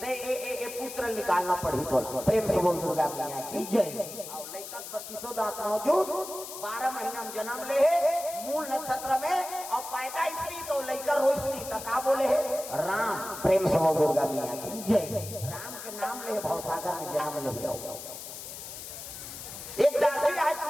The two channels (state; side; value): noise; left; hiss, 10 dB below the sound